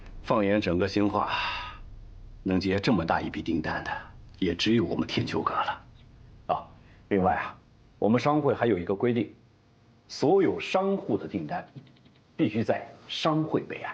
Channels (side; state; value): both; identical; correlation 1.00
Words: 放眼整个兴化，能接这么大一笔订单的，也只有我们天秋阁了。啊，另外啊，我们商会还有一个规定，所有商户的订单必须在商会备案。